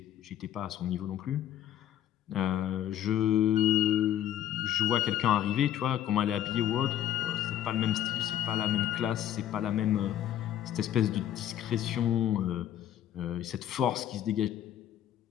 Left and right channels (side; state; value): right; quieter; 11.3 dB